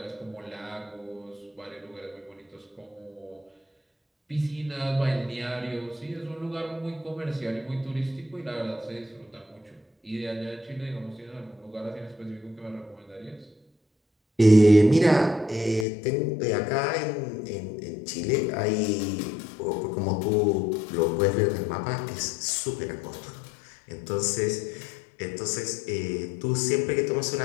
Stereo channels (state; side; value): drops out; right; at 15.9 s